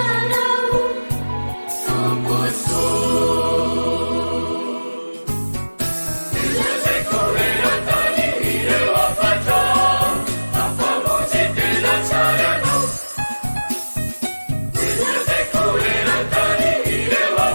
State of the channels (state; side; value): inverted; both; correlation -1.00